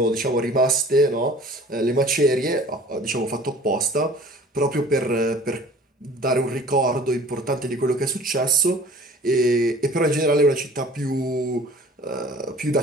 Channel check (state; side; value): normal; both; correlation 0.47